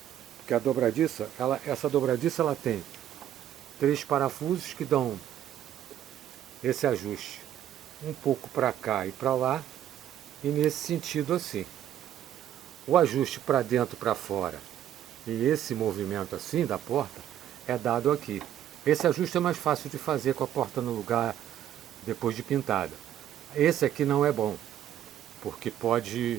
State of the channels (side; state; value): left; quieter; 11.1 dB